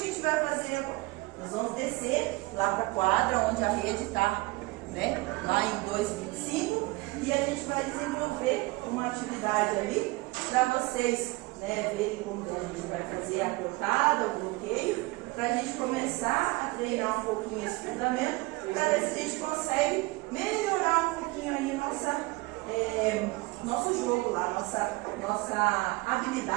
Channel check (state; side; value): quieter; left; 23.0 dB